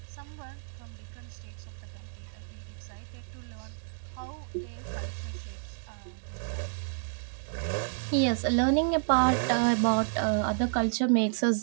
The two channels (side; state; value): left; silent; digital silence